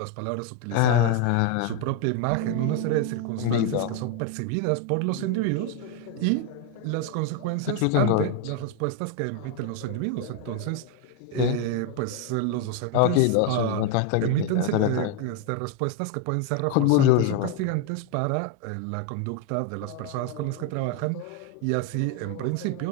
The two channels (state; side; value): different; both; correlation 0.01